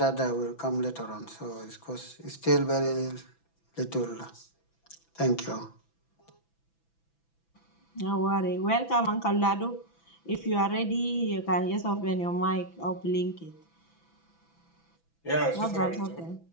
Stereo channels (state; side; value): late; right; 6.0 ms